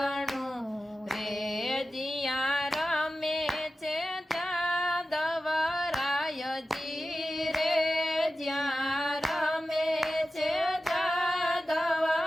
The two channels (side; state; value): both; normal; correlation 0.94